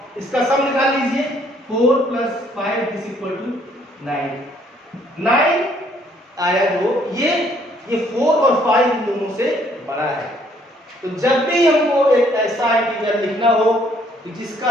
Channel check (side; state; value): both; normal; correlation 0.64